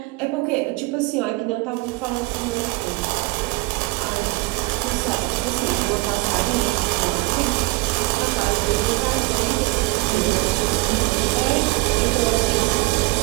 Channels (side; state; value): left; quieter; 23.8 dB